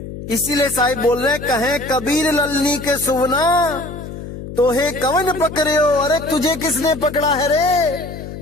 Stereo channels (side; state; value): left; noise; hum, 10 dB below the sound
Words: इसीलिए साहिब बोल रहे हैं, कहे कबीर ललनी के सुवना तो हे कवन पकड़े हो। अरे तुझे किसने पकड़ा है रे,